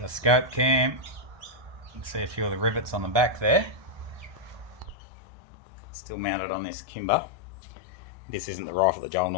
the SkopeCam. You can see a few of the rivets on the back there. Still mounted on this kimber. This isn't the rifle that Joel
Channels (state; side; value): late; left; 1.2 ms